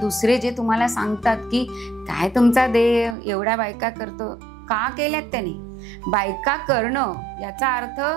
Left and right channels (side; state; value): left; drops out; at 3.2 s